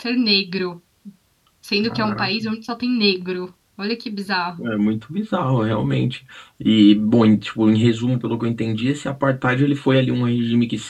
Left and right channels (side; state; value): both; identical; correlation 1.00